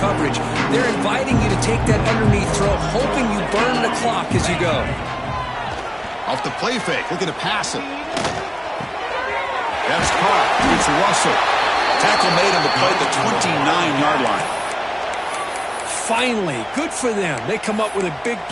They're inviting you to take that underneath throw, hoping you burn the clock as you go. Off the play fake. Look at it pass it. That's caught. It's Russell. Tackle made on the play at the 29-yard line. Finally, good for them. They come up with a big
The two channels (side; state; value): both; identical; correlation 1.00